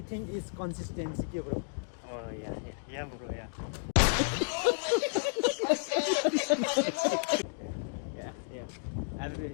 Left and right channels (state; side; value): silent; right; digital silence